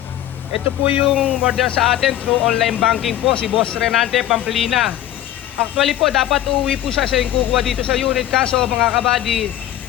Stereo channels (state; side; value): quieter; right; 12.8 dB